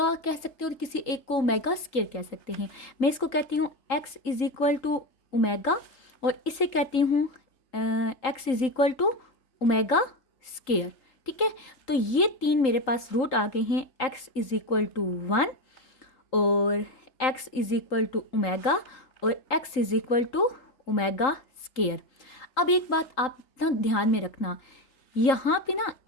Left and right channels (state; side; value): late; right; 3.8 ms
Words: कह सकते हैं और किसी एक को ओमेगा स्क्वायर कह सकते हैं। मैं इसको कहती हूँ x is equal to omega, और इसे कहती हूँ x is equal to omega square, ठीक है। तो ये 3 मेरे पास रूट आ गए हैं, x इज इक्वल टू 1 और x is equal to omega और x is equal to omega square. अब एक बात आप ना ध्यान में रखना, यहाँ पे ना